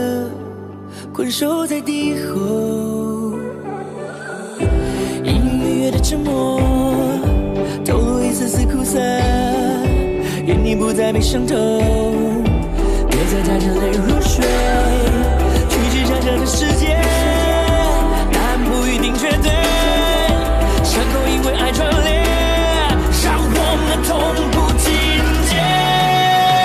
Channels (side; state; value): both; identical; correlation 1.00